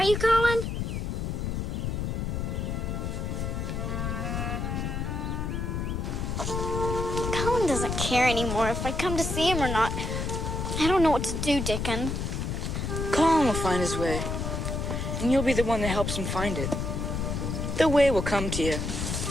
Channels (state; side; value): noise; left; rumble, 2 dB below the sound